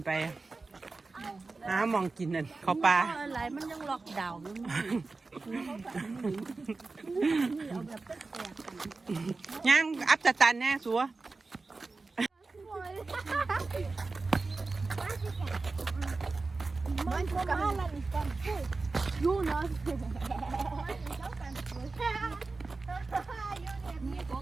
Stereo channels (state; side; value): quieter; left; 3.8 dB